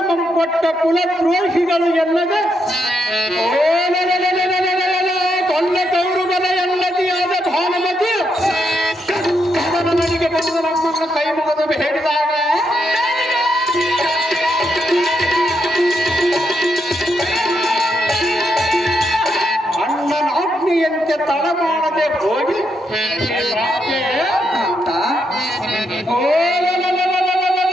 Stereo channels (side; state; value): both; normal; correlation 0.80